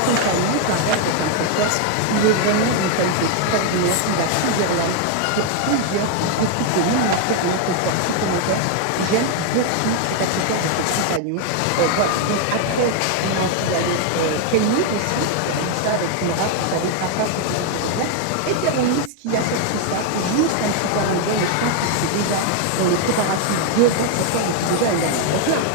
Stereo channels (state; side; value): different; both; correlation 0.01